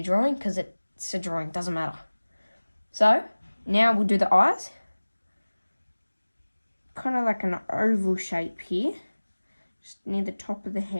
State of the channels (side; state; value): both; inverted; correlation -1.00